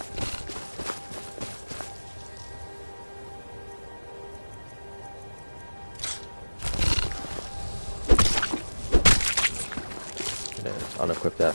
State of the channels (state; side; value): inverted; both; correlation -1.00